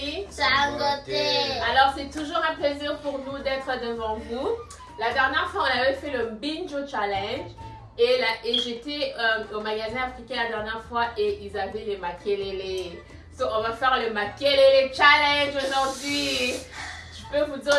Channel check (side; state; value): both; identical; correlation 1.00